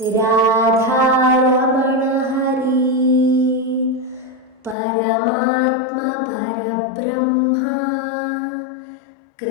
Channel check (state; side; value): drops out; right; at 4.8 s